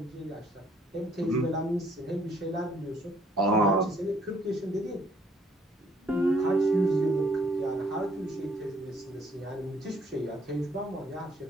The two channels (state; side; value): normal; both; correlation 0.64